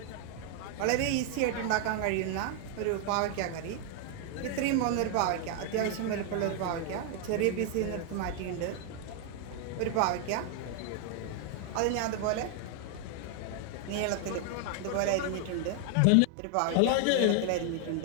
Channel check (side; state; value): both; different; correlation 0.00